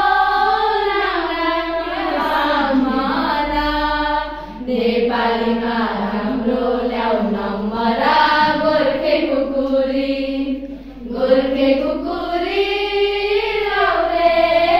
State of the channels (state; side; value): identical; both; correlation 1.00